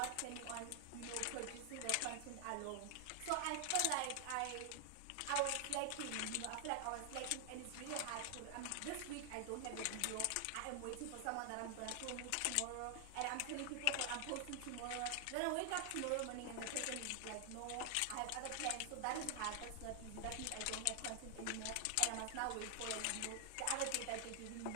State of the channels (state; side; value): different; both; correlation 0.00